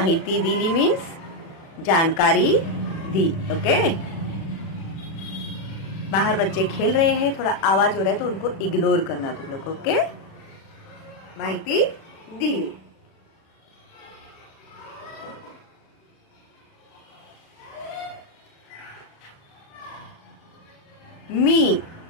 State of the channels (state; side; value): late; right; 36 ms